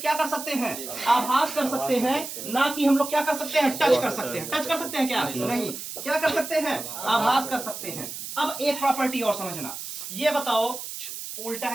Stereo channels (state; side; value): noise; right; hiss, 8 dB below the sound